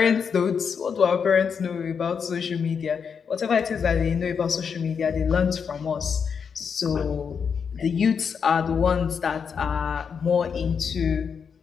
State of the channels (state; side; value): quieter; right; 6.5 dB